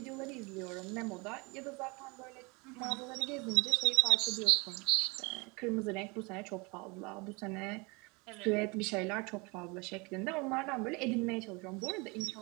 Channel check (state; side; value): quieter; left; 28.1 dB